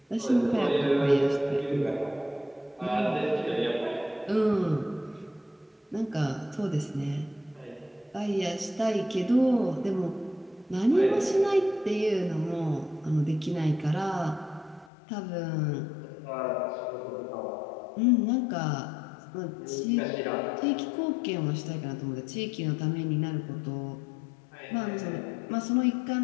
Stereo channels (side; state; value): right; drops out; at 14.9 s